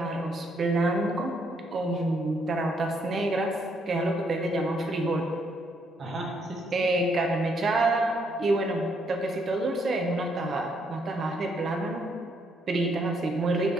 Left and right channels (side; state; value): both; normal; correlation 0.73